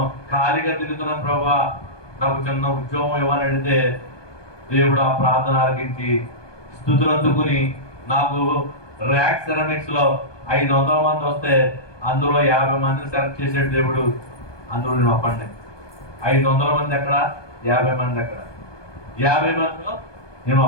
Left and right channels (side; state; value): right; late; 1.2 ms